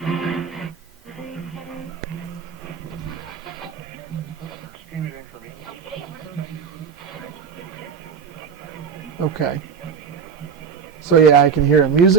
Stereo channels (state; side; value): quieter; left; 6.4 dB